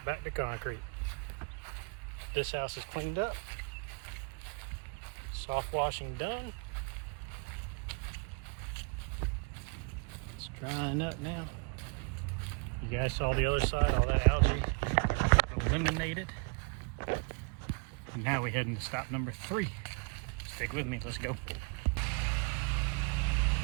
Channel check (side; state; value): left; quieter; 33.8 dB